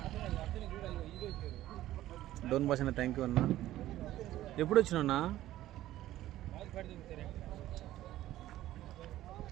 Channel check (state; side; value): quieter; left; 14.4 dB